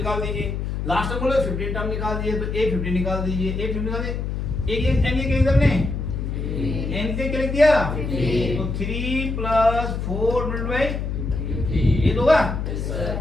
दीजिए, लास्ट टर्म बोले 15 टर्म निकाल दीजिए तो a15 निकाल दीजिए, a15 निकाल दीजिए एक n के किधर ने n के क्या लिख दिया तो 3 + 4 × ये होगा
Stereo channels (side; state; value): left; noise; hum, 3 dB below the sound